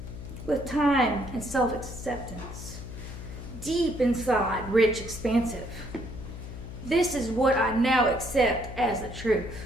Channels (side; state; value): left; noise; hum, 10 dB below the sound